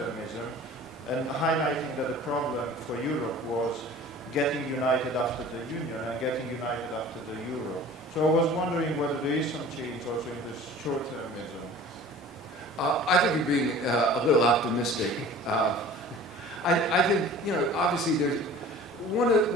and highlighting that the problem for Europe was getting united after the Union and getting united after the Euro. So I was wondering whether there is some change also in this short-termism. I think you're being a little optimistic. I think, you know, obviously there's one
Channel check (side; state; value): both; normal; correlation 0.44